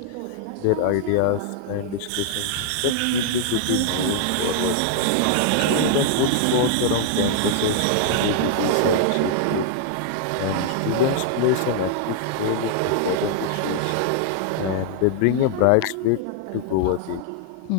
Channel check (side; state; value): both; different; correlation -0.01